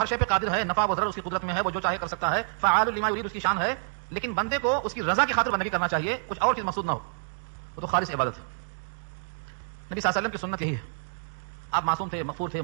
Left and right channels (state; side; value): silent; left; digital silence